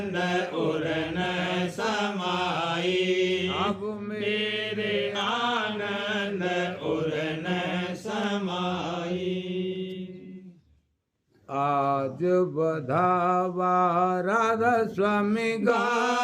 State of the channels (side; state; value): both; identical; correlation 1.00